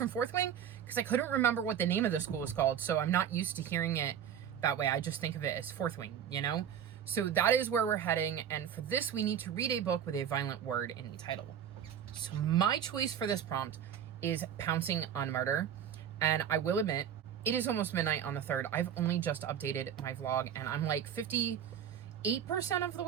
Fourth Wing? Because I couldn't remember what the name of the school is called, so I'm not used to hearing it that way. I just think of it as Fourth Wing, you know? So that is where we're heading, and for this we need to read a book with a violent word in the title. So my choice for this prompt is Pouncing on Murder, and I will admit, it is almost midnight on the 3rd. I've only just updated my vlog, and I'm like 58% of the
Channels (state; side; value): quieter; left; 8.9 dB